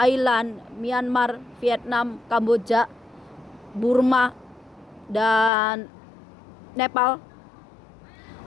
Myanmar, Vietnam, Kamboja, Burma, dan Nepal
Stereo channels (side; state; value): right; drops out; at 5.5 s